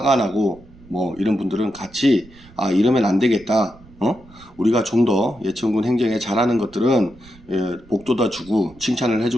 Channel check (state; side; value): noise; right; rumble, 23 dB below the sound